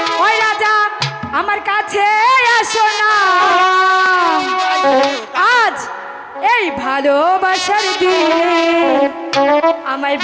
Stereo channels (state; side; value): identical; both; correlation 1.00